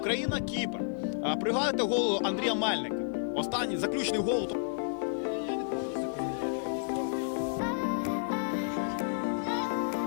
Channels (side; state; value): right; silent; digital silence